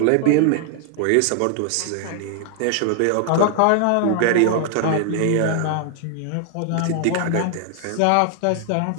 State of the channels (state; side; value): different; both; correlation 0.00